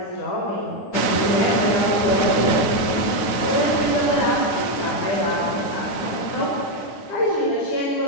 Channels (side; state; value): right; late; 9.4 ms